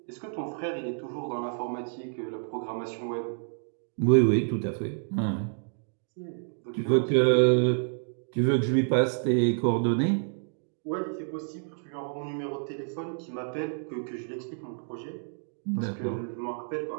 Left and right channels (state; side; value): silent; left; 58 dB below the other